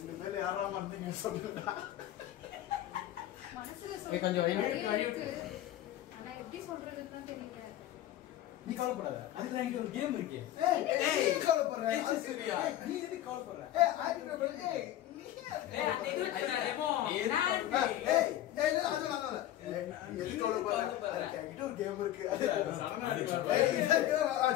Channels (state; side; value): quieter; right; 13.1 dB